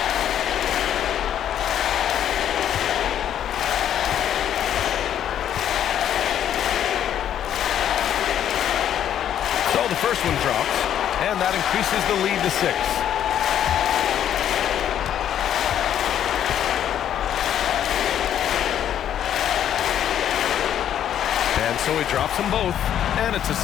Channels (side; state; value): right; quieter; 10.2 dB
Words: The first one drops, and that increases the lead to 6. And so he drops them both, and it's a